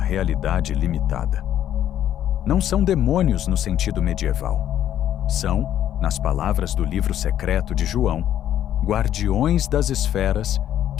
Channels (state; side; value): quieter; right; 11.1 dB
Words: limitada. Não são demônios no sentido medieval. São, nas palavras do livro secreto de João, guardiões das esferas